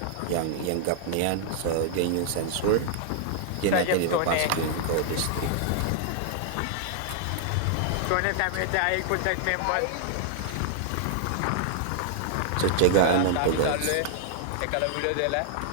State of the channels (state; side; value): different; both; correlation -0.01